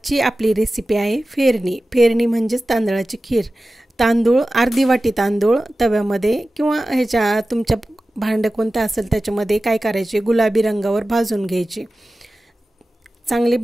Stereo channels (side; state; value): both; normal; correlation 0.95